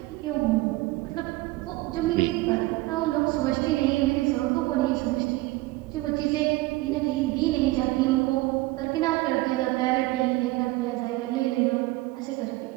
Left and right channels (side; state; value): left; quieter; 19.9 dB